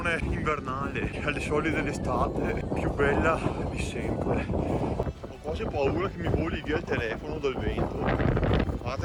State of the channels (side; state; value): both; identical; correlation 1.00